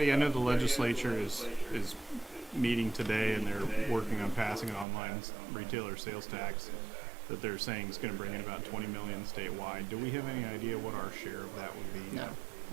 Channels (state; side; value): drops out; left; at 4.9 s